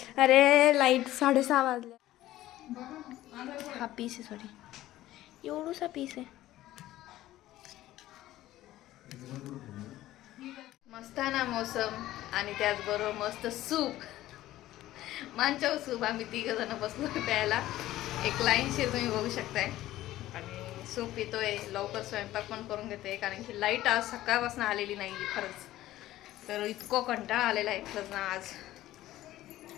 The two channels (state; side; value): quieter; right; 15.0 dB